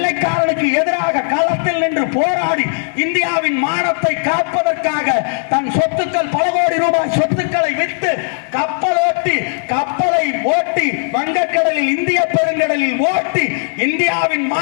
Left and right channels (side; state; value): right; silent; digital silence